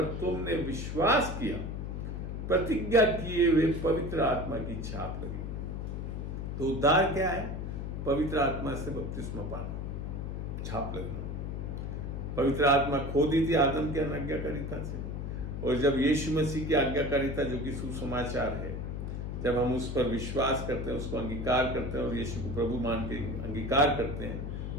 तुमने विश्वास किया, प्रतिज्ञा किए हुए पवित्र आत्मा की छाप लगी। तो उद्धार क्या है? पवित्र आत्मा से बपतिस्मा पाना, छाप लगना। पवित्र आत्मा खो दी थी आदम के अनाज्ञाकारिता से, और जब यीशु मसीह की आज्ञाकारिता, जो कि सुसमाचार है, जब हम उस पर विश्वास करते हैं, उसको अंगीकार करते हैं और यीशु को प्रभु मान के अंगीकार करते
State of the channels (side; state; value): left; noise; hum, 4 dB below the sound